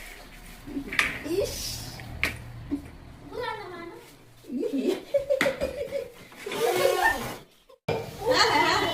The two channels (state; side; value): identical; both; correlation 1.00